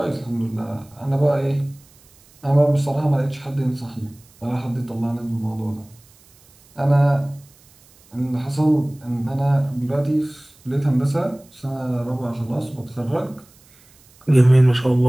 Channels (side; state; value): right; noise; hiss, 28 dB below the sound